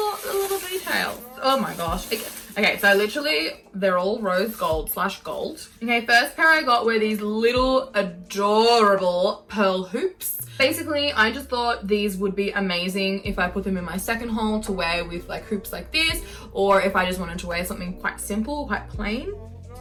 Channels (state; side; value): identical; both; correlation 1.00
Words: details. Oh my gosh. Okay, so literally they're all rose gold / gold. Okay, first pair I got were these little adorable pearl hoops. Basically, I just thought these would be amazing if I put them in my second haul to wear with like hoops like this, or if I just wanted to wear something quite simple, quite plain.